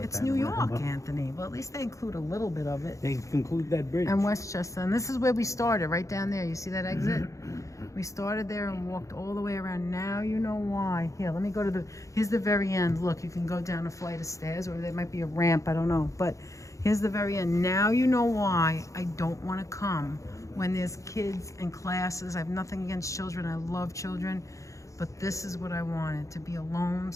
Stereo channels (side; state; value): right; late; 0.15 ms